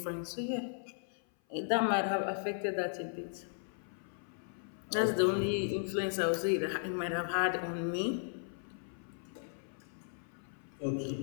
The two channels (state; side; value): silent; right; 54 dB below the other